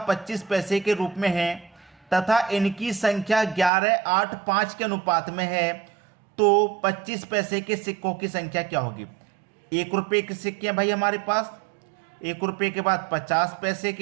25 पैसे के रूप में हैं तथा इनकी संख्या 11, 8, 5 के अनुपात में है, तो 25 पैसे के सिक्कों की संख्या क्या होगी? 1 रुपये के सिक्के हैं भाई हमारे पास, 1 रुपये के बाद 50 पैसे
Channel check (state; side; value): drops out; left; at 3.7 s